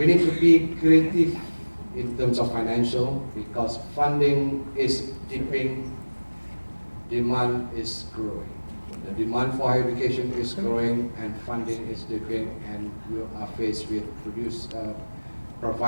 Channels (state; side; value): inverted; both; correlation -1.00